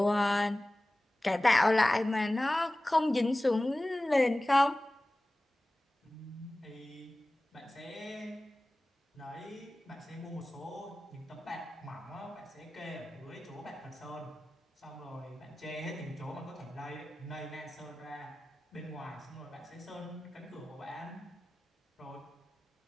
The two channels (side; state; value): both; normal; correlation 0.97